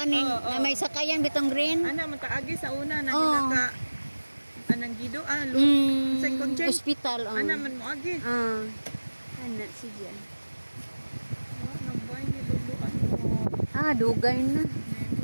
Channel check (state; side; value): inverted; both; correlation -1.00